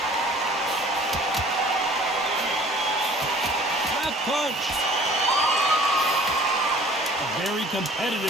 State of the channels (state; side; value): normal; both; correlation 0.50